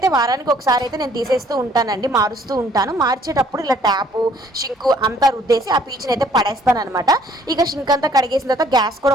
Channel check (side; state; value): both; normal; correlation 0.61